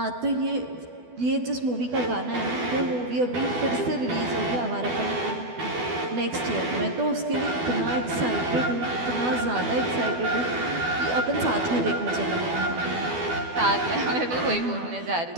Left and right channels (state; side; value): late; left; 12 ms